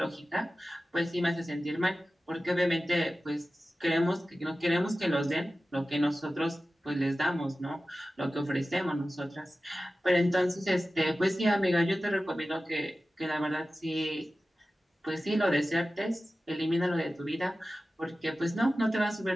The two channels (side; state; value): both; normal; correlation 0.95